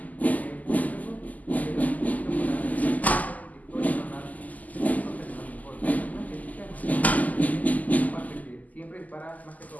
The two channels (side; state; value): right; late; 0.078 ms